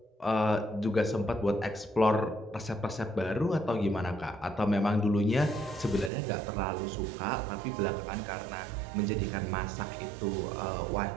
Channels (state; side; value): drops out; left; at 6.1 s